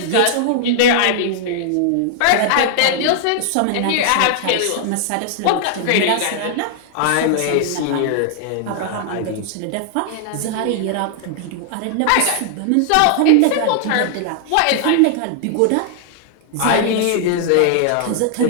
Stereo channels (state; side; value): different; both; correlation 0.00